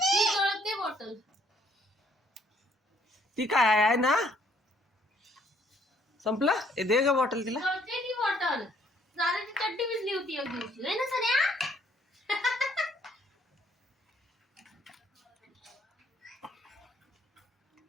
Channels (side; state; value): both; normal; correlation 0.65